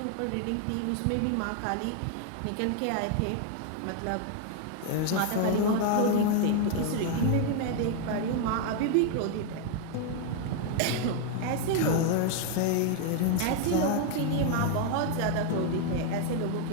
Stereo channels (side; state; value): both; different; correlation 0.00